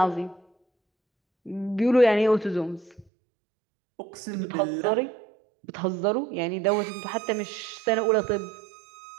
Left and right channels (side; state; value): left; drops out; at 3.1 s